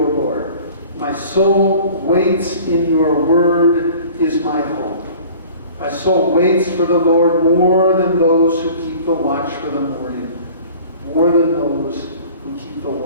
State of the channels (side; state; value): both; inverted; correlation -0.46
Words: Lord. My soul waits in your word is my hope. My soul waits for the Lord more than those who keep the watch for the morning. More than those who keep the